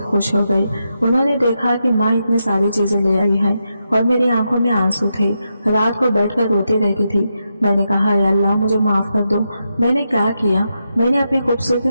खुश हो गए। उन्होंने देखा कि माँ इतनी सारी चीजें ले आई है और मेरी आंखों में आंसू थे। रात को बैठकर रोती रहती थी। मैंने कहा या अल्लाह मुझे माफ कर दो, मैंने क्या किया? मैंने अपनी खूबसूरती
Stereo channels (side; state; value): both; inverted; correlation -0.85